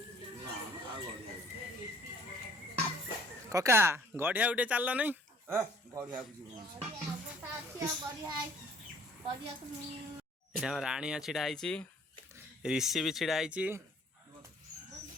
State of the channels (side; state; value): both; normal; correlation 0.57